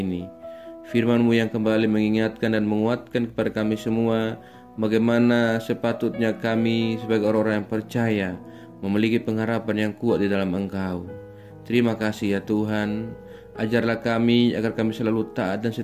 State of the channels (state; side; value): identical; both; correlation 1.00